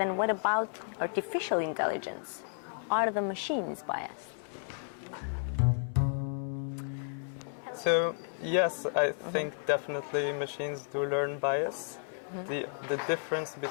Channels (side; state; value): right; silent; 56 dB below the other